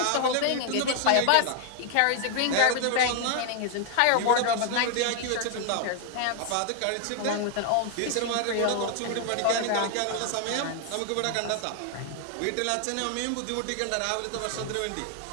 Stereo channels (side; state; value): both; different; correlation 0.00